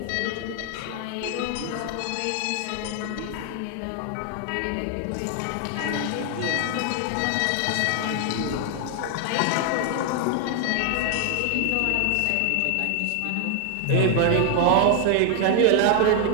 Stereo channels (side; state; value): both; different; correlation 0.00